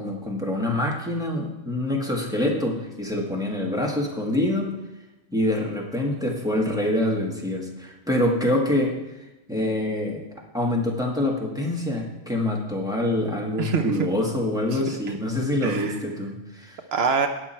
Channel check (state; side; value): normal; both; correlation 0.32